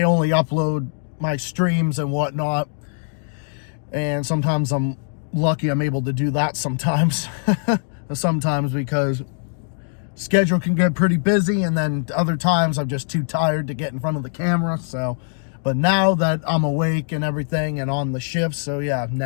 only upload my streams and whatnot, and sometimes I'm lucky I'm able to do that sometimes. Sometimes because schedule can get pretty busy, and then other times I'm just too tired to get in front of the camera. So, but now that I'm awake and everything and on the shift, so yeah,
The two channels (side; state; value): right; silent; digital silence